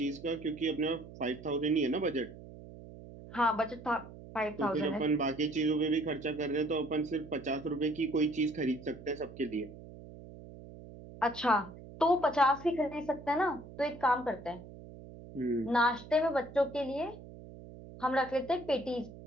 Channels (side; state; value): right; noise; hum, 16 dB below the sound